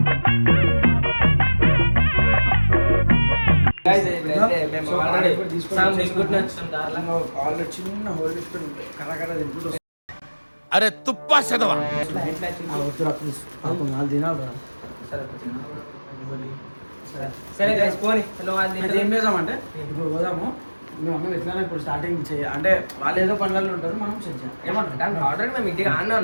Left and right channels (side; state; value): both; inverted; correlation -1.00